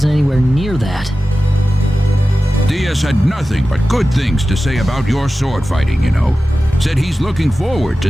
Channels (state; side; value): normal; both; correlation 0.95